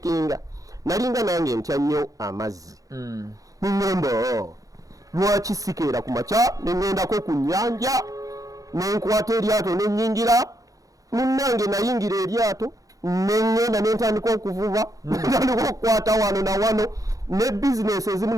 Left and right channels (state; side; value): late; left; 0.17 ms